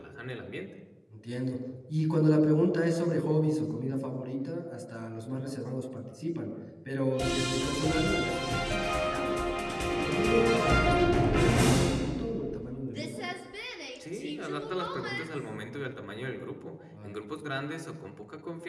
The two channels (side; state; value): both; identical; correlation 1.00